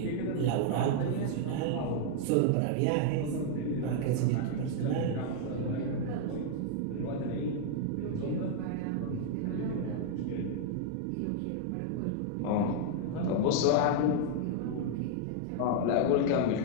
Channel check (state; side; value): different; both; correlation 0.00